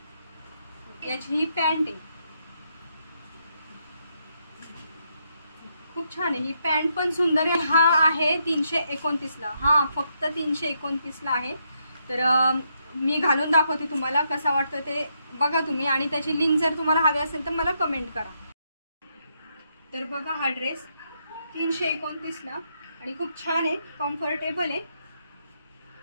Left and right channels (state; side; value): inverted; both; correlation -0.78